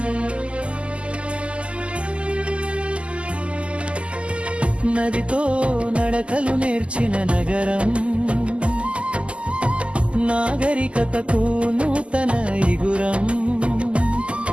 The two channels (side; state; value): left; late; 0.055 ms